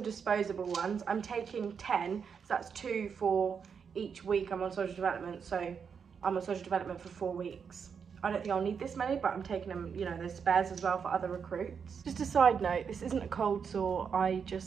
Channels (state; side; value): quieter; left; 6.5 dB